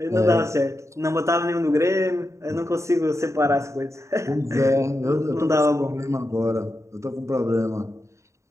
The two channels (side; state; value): left; late; 0.14 ms